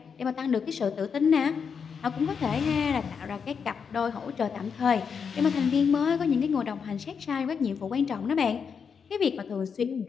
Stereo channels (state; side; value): quieter; right; 6.3 dB